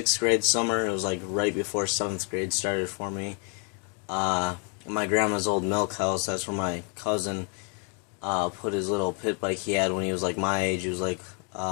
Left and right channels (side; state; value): right; quieter; 39.2 dB